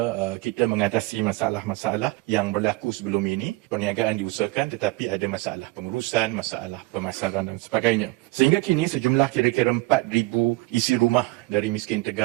kita mengatasi masalah-masalah yang berlaku sebelum ini. Perniagaan diusahakan tetapi ada masalah pengurusan, masalah pemasaran dan sebagainya. Sehingga kini sejumlah kira-kira 4,000 isi rumah dari miskin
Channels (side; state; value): left; quieter; 21.7 dB